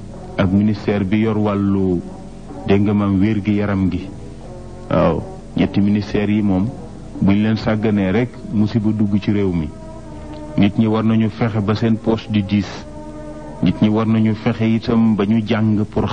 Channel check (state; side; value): identical; both; correlation 1.00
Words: ak ministère bi yor wàllu dégg nga maam wér gi yaram gi waaw ñetti ministère yi moom buñ leen sàgganee rek musiba dugg ci réew mi nit ñi war nañu fexe ba seen poche di diis nit ñi war nañu fexe itam ba ñu jàng pour